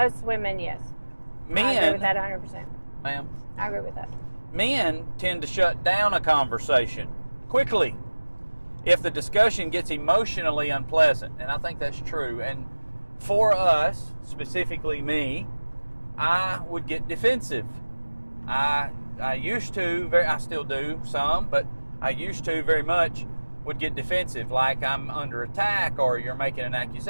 women, yes. I agree Men, with that 100%. ma'am, I agree with that. men tend to shut down a conversation quickly if the discussion gets emotionally unpleasant, and I think that's true. And for us, specifically me, I would get defensive. I used to, I still do some, but I used to very much would get defensive, like I'm under attack, or you're making an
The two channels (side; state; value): both; inverted; correlation -1.00